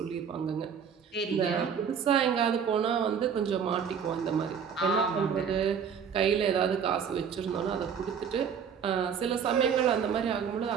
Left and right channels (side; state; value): left; quieter; 7.2 dB